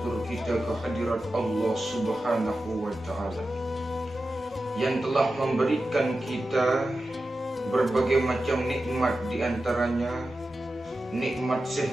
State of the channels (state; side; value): normal; both; correlation 0.92